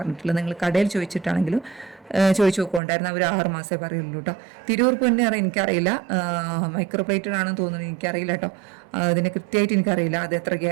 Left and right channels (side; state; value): left; drops out; at 2.8 s